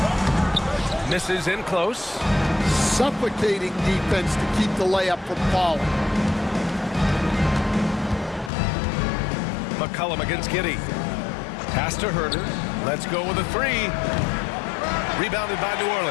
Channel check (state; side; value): drops out; right; at 8.5 s